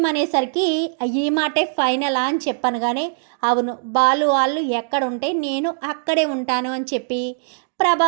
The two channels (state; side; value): silent; left; digital silence